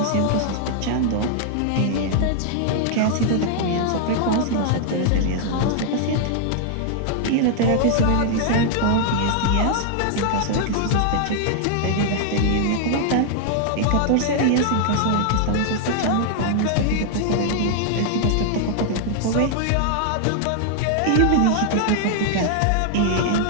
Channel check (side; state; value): both; different; correlation 0.00